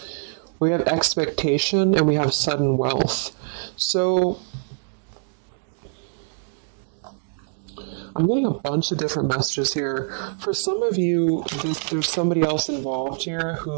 We have expectation and we have sudden wealth. So I'm getting a bunch of different messages here. For some of you, there's somebody else involved here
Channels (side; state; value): left; silent; digital silence